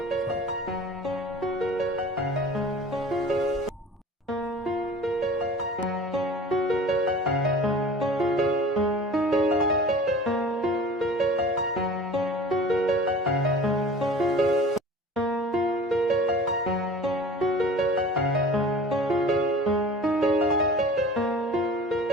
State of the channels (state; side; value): normal; both; correlation 0.42